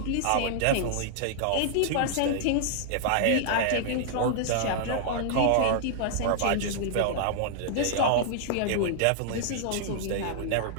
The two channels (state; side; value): different; both; correlation -0.01